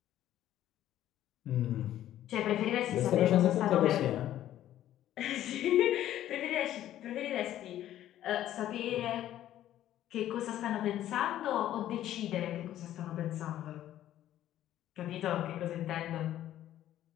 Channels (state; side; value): quieter; right; 12.5 dB